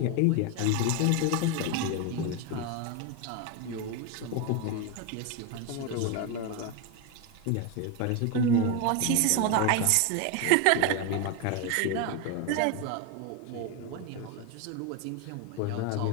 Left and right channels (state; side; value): different; both; correlation 0.02